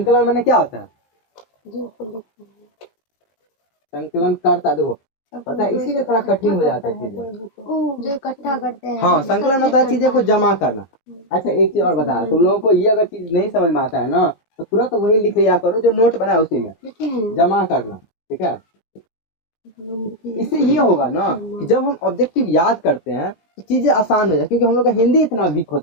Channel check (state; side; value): late; right; 18 ms